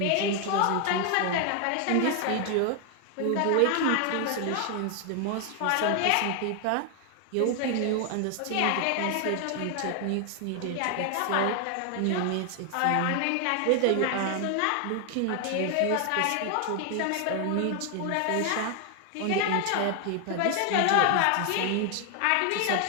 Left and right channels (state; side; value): different; both; correlation 0.00